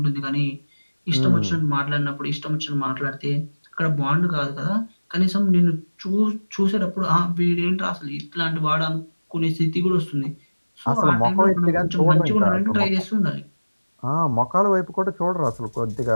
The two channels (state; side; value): inverted; both; correlation -1.00